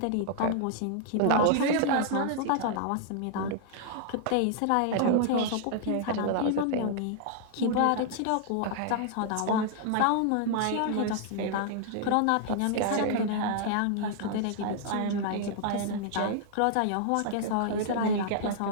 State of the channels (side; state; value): both; different; correlation -0.01